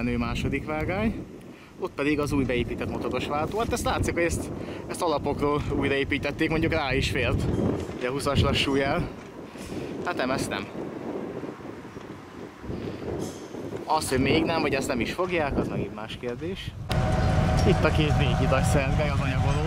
második vágány. Ott pedig az új beépített motoros váltó. Hát ezt látszik, hogy ezt alapokról újraépítették, mondjuk rá is fért. Ugye 20-as lassújel. Hát nem, ezt nem. Az, hogy még nem, vagy ezt nem is fogják, az megint más kérdés. Itt a két véghidas Szergely az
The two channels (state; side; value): identical; both; correlation 1.00